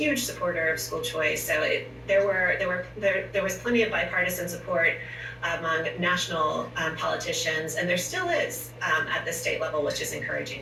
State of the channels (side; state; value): both; identical; correlation 1.00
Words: supporter of school choice. So there was plenty of bipartisan support among national politicians, and there still is at the state level, which is encouraging